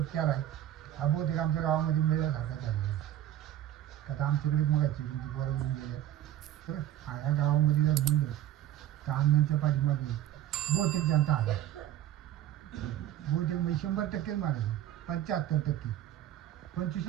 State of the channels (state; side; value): quieter; left; 12.2 dB